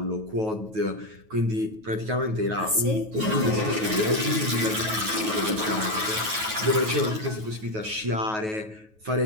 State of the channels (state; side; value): late; left; 9.3 ms